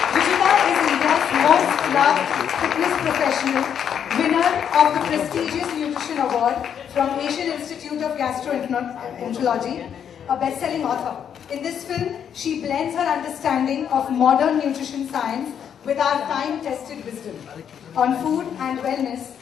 Ruchita is India's most loved fitness professional, winner of the prestigious Nutrition Award from Asian Institute of Gastroenterology, a best-selling author. In this film, she blends her understanding of modern nutrition science with our time-tested wisdom on food and wellness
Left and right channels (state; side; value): quieter; right; 8.4 dB